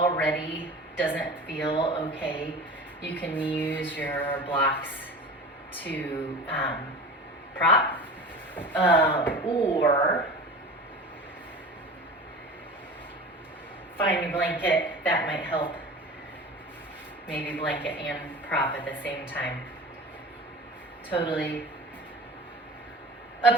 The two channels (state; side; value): normal; both; correlation 0.35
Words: doesn't feel okay, you can use your blocks to prop or find a blanket. That might help. Maybe blanket and prop at the same time. Totally